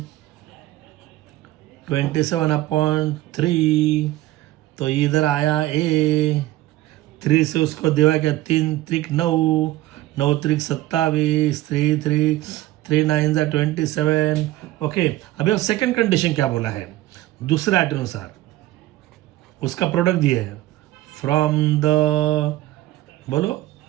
27/3। तो इधर आया ए, 3 से उसको देवा क्या, 3 त्रिक 9, 9 त्रिक 27, 3 9 27। ओके, अभी अब सेकंड कंडीशन क्या बोला है, दूसरे आर्ट अनुसार उसका प्रोडक्ट दिया है। फ्रॉम द बोलो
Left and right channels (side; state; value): left; quieter; 16.3 dB